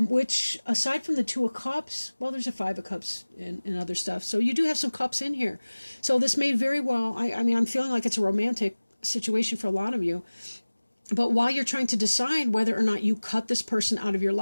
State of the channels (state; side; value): inverted; both; correlation -1.00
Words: aside from the Two of Cups, well, there's a Five of Cups and other stuff. So you do have some cups in here. So this may very well, I mean, I'm feeling like it's a romantic situation for a lot of you. But while you're trying to decide whether or not you cut this person out of your